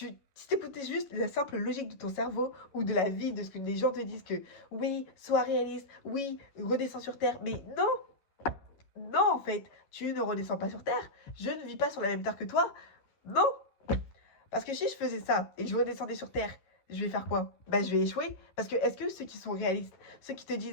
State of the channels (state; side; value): late; right; 11 ms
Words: t'écoutais juste la simple logique de ton cerveau ou de la vie, de ce que les gens te disent que oui, sois réaliste, oui, redescends sur Terre, mais non, non en fait, tu ne redescends pas sur Terre, je ne vis pas sur la même Terre que toi, non, parce que si je faisais ça et que je redescendais sur Terre, je vais faire quoi? Bah, je vais échouer. Parce que est-ce que ceux qui sont réalistes, ceux qui te